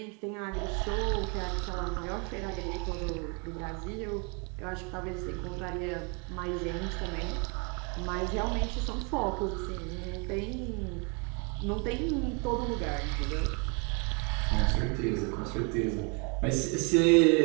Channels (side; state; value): left; quieter; 34.1 dB